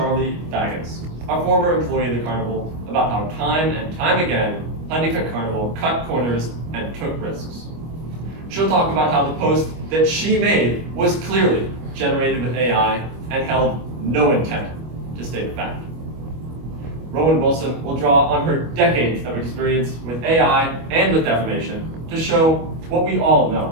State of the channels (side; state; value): left; late; 25 ms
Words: Baggins, a former employee of the carnival, about how time and time again, Honeycutt Carnival cut corners and took risks. She'll talk about how the post that she made was clearly generated with AI and held no intent to state a fact. Rowan Wilson will draw on her decades of experience with AI and with defamation to show what we all know.